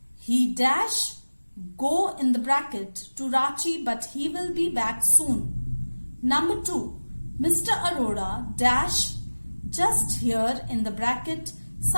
He dash go in the bracket to Ranchi but he will be back soon. Number 2. Mr. Arora dash just here in the bracket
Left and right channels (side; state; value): both; inverted; correlation -1.00